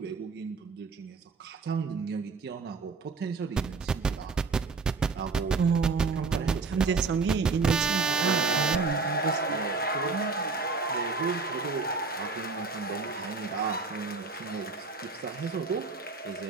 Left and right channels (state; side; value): quieter; left; 4.4 dB